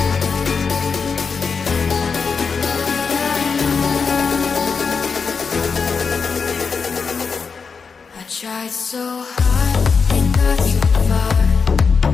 Tried so hard and got so far.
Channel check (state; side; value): quieter; right; 5.4 dB